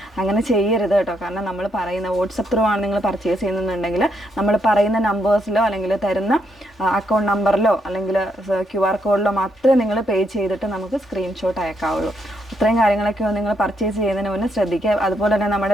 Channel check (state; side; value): normal; both; correlation 0.77